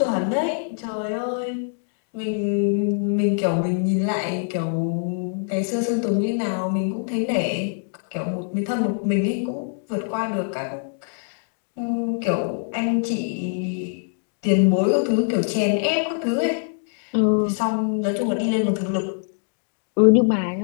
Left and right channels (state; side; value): silent; right; digital silence